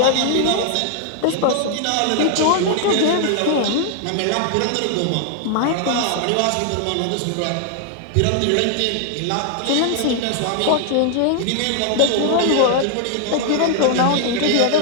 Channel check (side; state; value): both; different; correlation 0.00